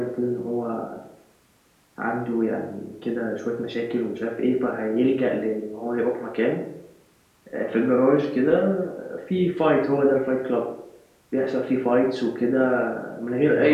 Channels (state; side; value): identical; both; correlation 1.00